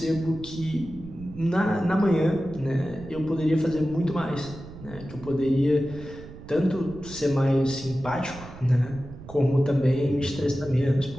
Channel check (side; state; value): right; noise; rumble, 15 dB below the sound